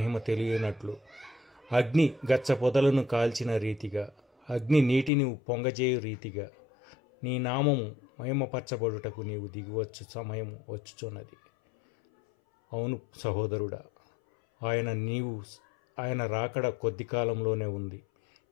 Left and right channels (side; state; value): right; drops out; at 5.1 s